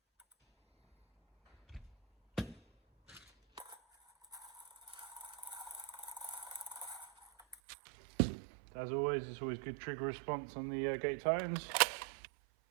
As always, it's always good trigger response on the Gate Titans.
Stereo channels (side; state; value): left; drops out; at 7.6 s